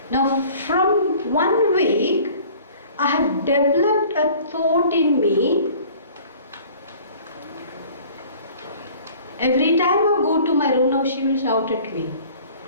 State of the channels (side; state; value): both; inverted; correlation -0.49